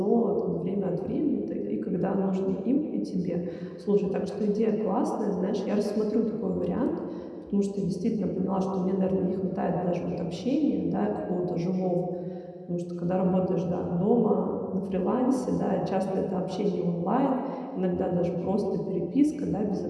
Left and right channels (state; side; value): identical; both; correlation 1.00